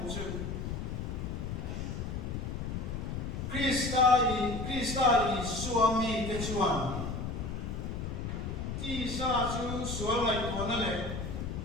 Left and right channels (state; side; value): noise; left; rumble, 4 dB below the sound